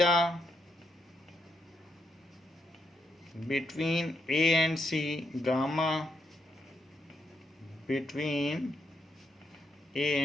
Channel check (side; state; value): both; normal; correlation 0.80